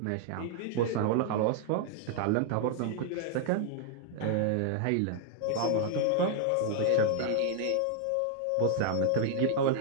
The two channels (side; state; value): both; different; correlation 0.00